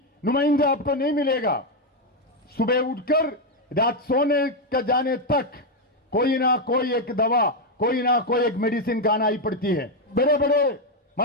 नुमाइंदा आपको नहीं मिलेगा, सुबह उठकर रात सोने का जाने तक कोई ना कोई एक दवा, कोई ना कोई एक मेडिसिन खाना ही पड़ती है। बड़े बड़े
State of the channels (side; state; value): both; normal; correlation 0.04